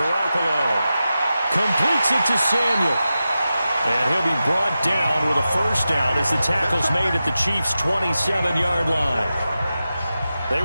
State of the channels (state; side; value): inverted; both; correlation -0.92